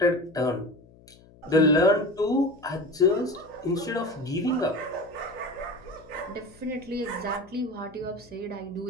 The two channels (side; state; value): left; noise; hum, 25 dB below the sound